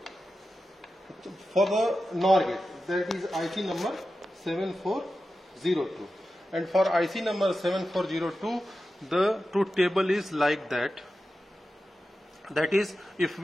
For the NOR gate, that is IC number 7402. And for IC number 7402, the truth table is like that. That is, if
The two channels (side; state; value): both; normal; correlation 0.92